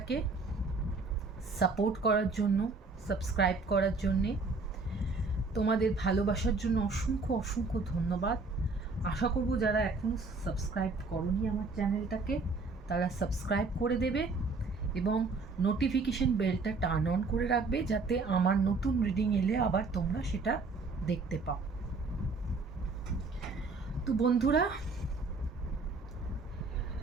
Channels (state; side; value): quieter; left; 3.9 dB